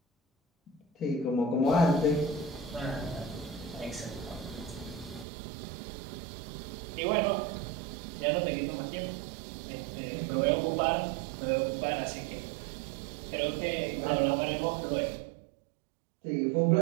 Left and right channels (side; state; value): left; drops out; at 5.2 s